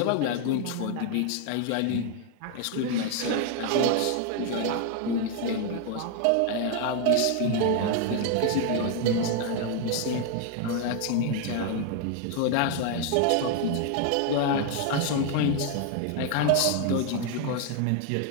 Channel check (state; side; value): different; both; correlation 0.01